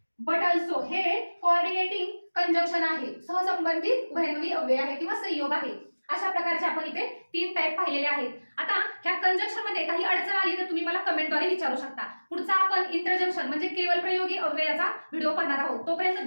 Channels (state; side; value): inverted; both; correlation -1.00